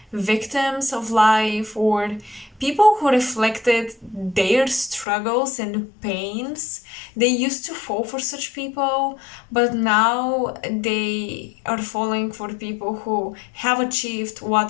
victims of life, or people who reflected their struggles and pains. They used to fall for such people, but now they are falling for people who have achieved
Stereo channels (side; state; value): right; drops out; at 5.1 s